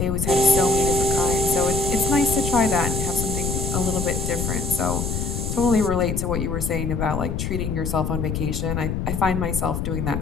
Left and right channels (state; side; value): noise; left; rumble, 2 dB below the sound